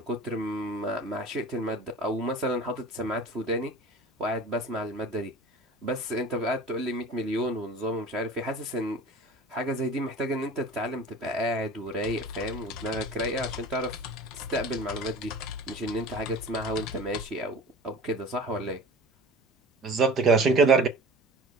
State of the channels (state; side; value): normal; both; correlation 0.39